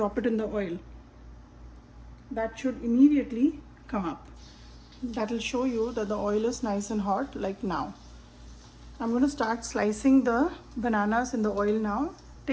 it in the oil. That should immediately come up. That will show you that the oil is nice and hot, like now. I'm going to start slicing the bananas in the oil now.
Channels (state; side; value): identical; both; correlation 1.00